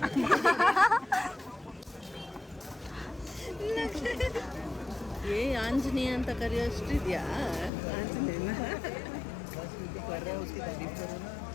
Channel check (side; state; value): right; drops out; at 7.7 s